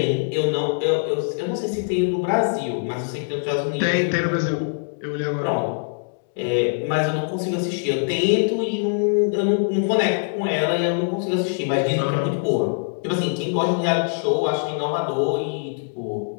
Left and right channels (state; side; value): silent; right; digital silence